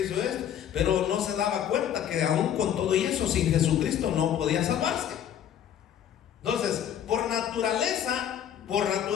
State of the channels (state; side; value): quieter; right; 9.8 dB